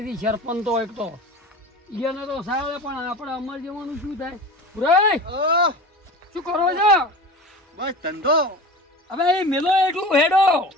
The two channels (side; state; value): both; normal; correlation 0.34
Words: સરપંચ તો એક તો એને તો સાવે પણ આપણે અમર જવાનું શું થાય? પુરાય શું કરો છો? બસ ધંધો હવે એ મેલો એટલું હેડો